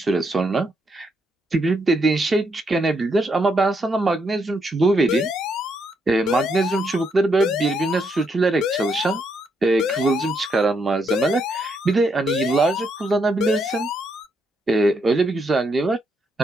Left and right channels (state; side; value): normal; both; correlation 0.77